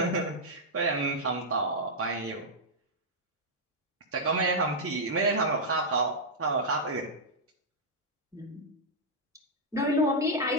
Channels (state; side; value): normal; both; correlation -0.07